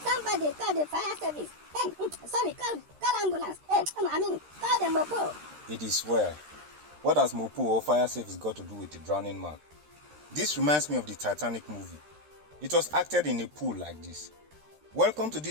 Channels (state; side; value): late; left; 13 ms